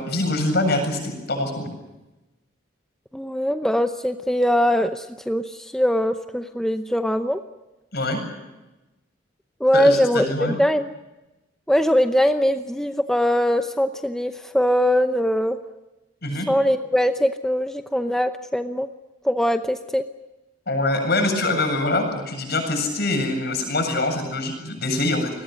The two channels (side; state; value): both; normal; correlation 0.74